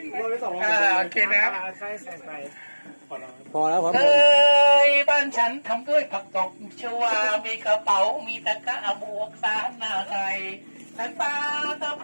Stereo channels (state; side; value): inverted; both; correlation -1.00